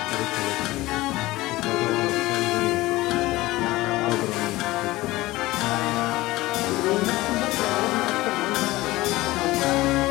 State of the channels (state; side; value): quieter; right; 18.8 dB